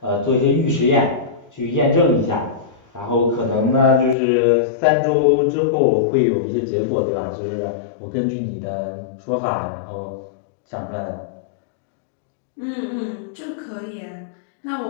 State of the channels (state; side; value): drops out; right; at 4.2 s